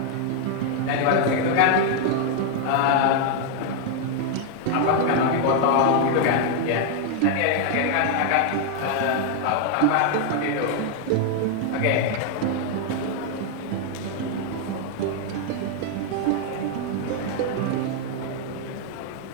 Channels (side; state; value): both; different; correlation 0.00